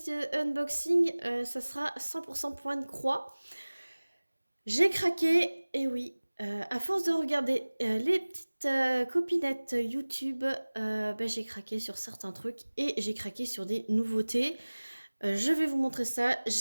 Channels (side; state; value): both; inverted; correlation -1.00